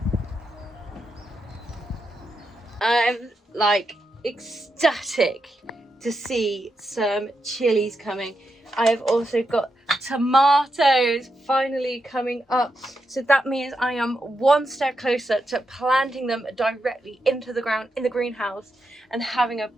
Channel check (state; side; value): normal; both; correlation 0.85